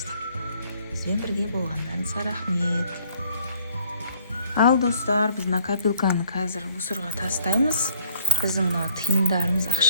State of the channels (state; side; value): inverted; both; correlation -0.59